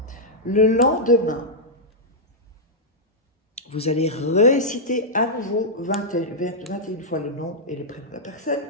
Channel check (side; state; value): both; normal; correlation -0.08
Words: Le lendemain, vous allez réciter à nouveau 21 fois le nom et le prénom de la personne.